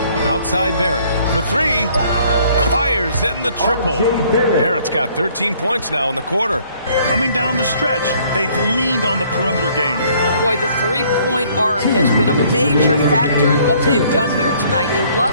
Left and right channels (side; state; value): both; inverted; correlation -0.61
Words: Outside Barrett for 3. Fires in the triple. Barrett's got 13 points now in the quarter. Coming down the stretch, they've leaned on the perimeter game. Boy, the 3-point arc has been a major factor in what they've done here tonight. You